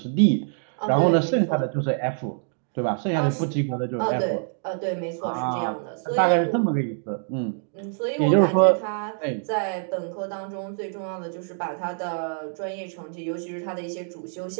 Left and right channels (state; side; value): silent; left; digital silence